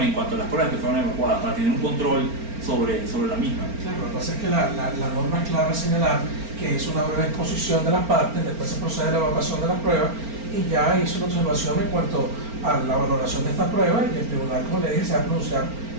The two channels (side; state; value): left; late; 4.4 ms